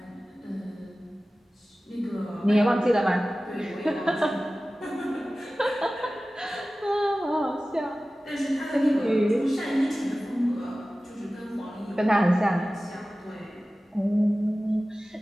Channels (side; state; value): both; normal; correlation 0.96